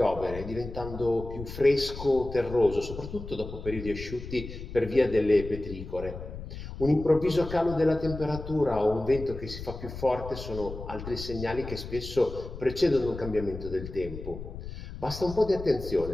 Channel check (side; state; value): left; noise; rumble, 10 dB below the sound